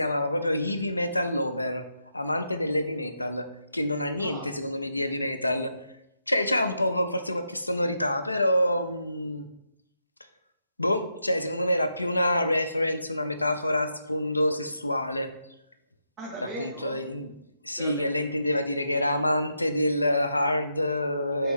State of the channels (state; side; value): inverted; both; correlation -0.82